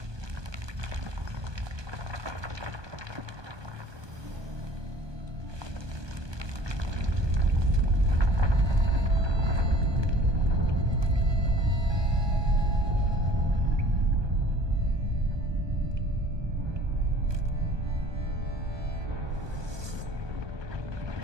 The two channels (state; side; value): late; left; 1.2 ms